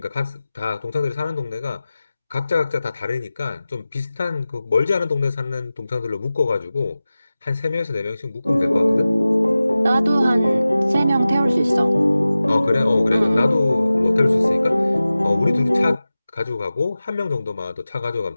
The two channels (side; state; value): both; inverted; correlation -0.96